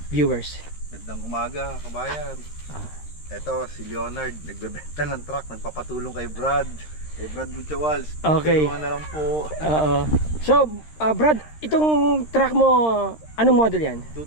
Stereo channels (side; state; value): right; late; 13 ms